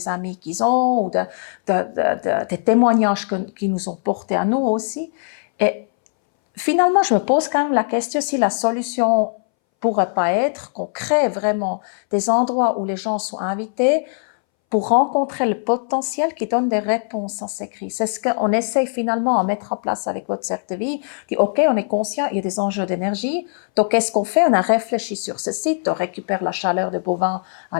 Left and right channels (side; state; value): right; silent; 63 dB below the other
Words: amis qu'ils ont, ou des témoignages qu'ils nous ont portés à nous aussi. Et finalement, je me pose quand même la question si la solution pourrait pas être qu'on crée vraiment des endroits où les gens sont invités pour rencontrer le potentiel qui donne des réponses à ces crises. C'est ce qu'on essaye finalement à mettre en place avec Votre Cercle de Vie. Dit, OK, on est conscient, il y a des enjeux d'énergie. Donc, qu'est-ce qu'on fait? On a réfléchi sur ce site, on récupère la chaleur des bovins à